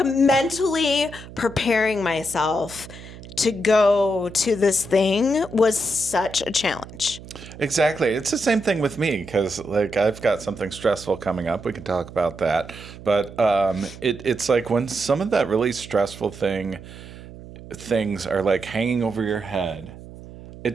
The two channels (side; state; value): right; noise; hum, 16 dB below the sound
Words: Mentally preparing myself to go to this thing was such a challenge. Exactly. It's the same thing with me because, like, I've got something stressful coming up. We can talk about that. But it's like when some of that really stressful things are, like, hanging over your head,